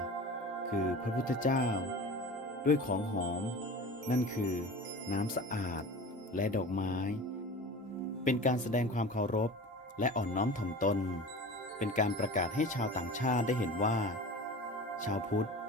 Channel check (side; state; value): both; normal; correlation 0.35